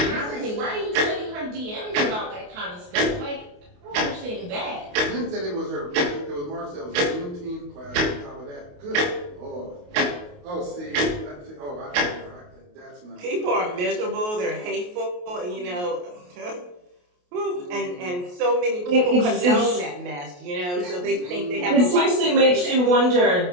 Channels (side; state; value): left; late; 28 ms